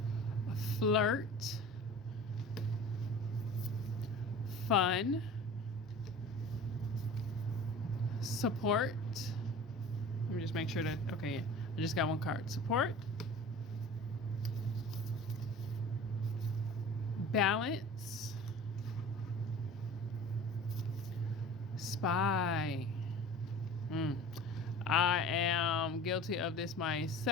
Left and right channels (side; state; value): both; normal; correlation 0.40